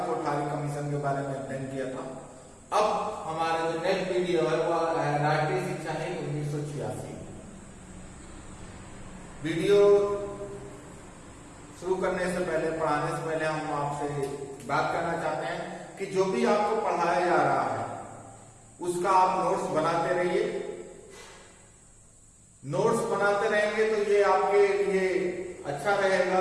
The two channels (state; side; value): identical; both; correlation 1.00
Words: कोठारी कमीशन के बारे में अध्ययन किया था। अब हमारा जो नेक्स्ट वीडियो है वह है राष्ट्रीय शिक्षा नीति 1986। वीडियो शुरू करने से पहले, पढ़ाने से पहले हम आपसे बात करना चाहते हैं कि जो भी आपको पढ़ाया जा रहा है उसका आप नोट्स बनाते रहिए। नोट्स बनाते रहेंगे तो ये आपके लिए अच्छा